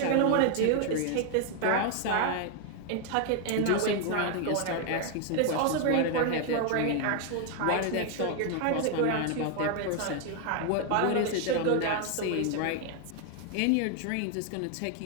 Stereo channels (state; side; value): different; both; correlation 0.00